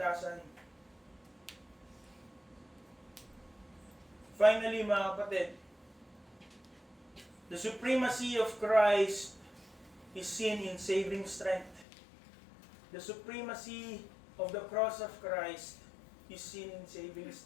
Finally, mga kapatid, the supremacy of Christ is seen in saving strength. The supremacy of the cross of Christ is seen in saving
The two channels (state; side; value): drops out; right; at 11.9 s